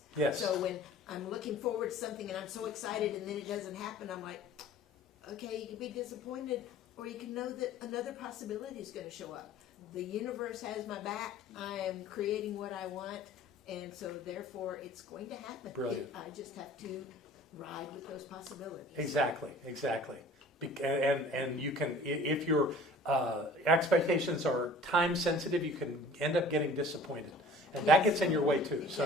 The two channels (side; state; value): both; normal; correlation 0.47